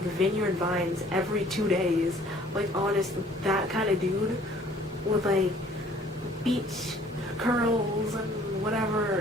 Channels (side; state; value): both; normal; correlation 0.56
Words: Vineyard Vines every 2 days. Like, honest, that kind of dude with like beach curls and